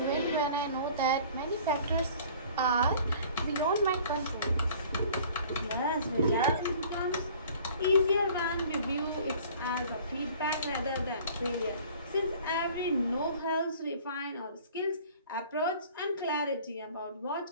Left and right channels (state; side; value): inverted; both; correlation -0.49